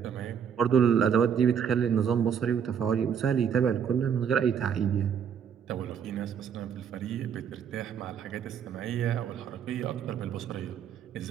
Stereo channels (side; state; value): left; quieter; 7.8 dB